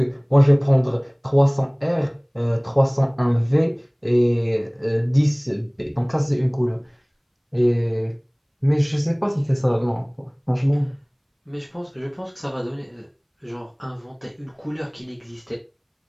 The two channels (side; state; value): both; identical; correlation 1.00